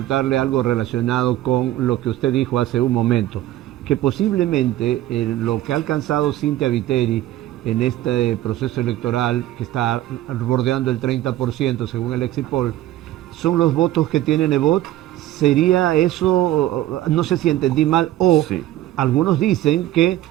algo relacionado con lo que usted dijo hace un momento, que posiblemente lo que ha alcanzado Cynthia Viteri en este proceso electoral, que está bordeando el 30% según el Exit Poll, son los votos que tiene Nebot. ¿Sería eso, no sé si entendí mal, o Sí. algunos dicen que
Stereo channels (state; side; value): quieter; left; 14.3 dB